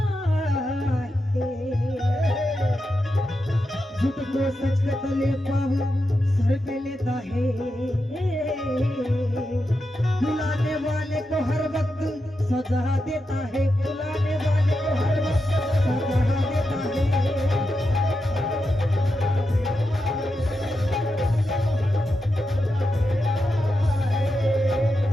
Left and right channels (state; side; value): normal; both; correlation 0.88